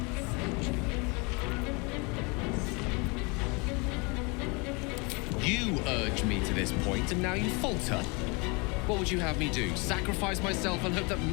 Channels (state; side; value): quieter; right; 29.9 dB